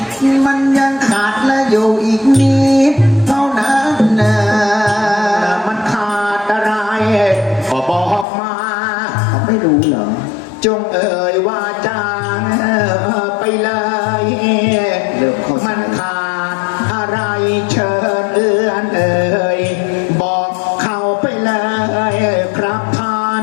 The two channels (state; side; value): drops out; right; at 8.2 s